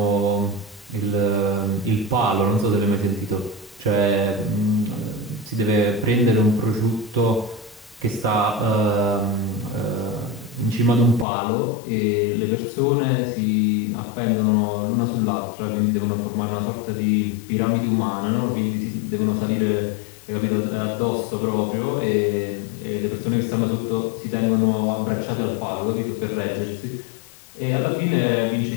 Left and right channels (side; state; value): right; drops out; at 11.2 s